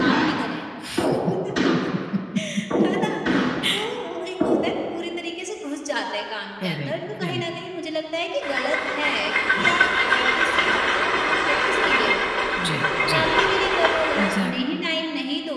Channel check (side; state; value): both; identical; correlation 1.00